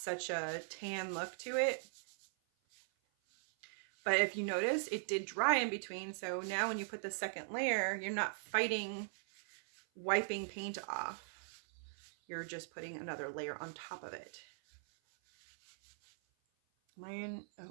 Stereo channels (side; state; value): left; silent; 51 dB below the other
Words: a tan look to it. But if you notice, it did dry in between. So now when you put the second layer, you're not fighting wiping paint off. You're just putting another layer on top of it.